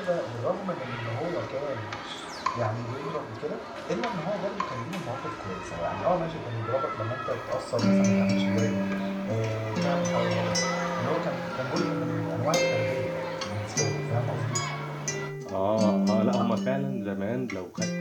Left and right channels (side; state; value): both; identical; correlation 1.00